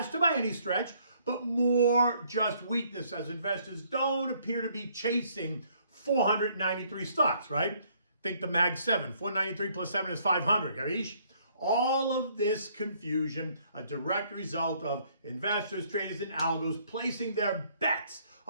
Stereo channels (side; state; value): both; inverted; correlation -0.65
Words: by any stretch, but more just weakness as investors don't appear to be chasing 493 stocks, right? Think the Mag 7. 493 plus 7 is 500, Gavish? All of this confusion, a direct result of investors, traders, and algos placing their bets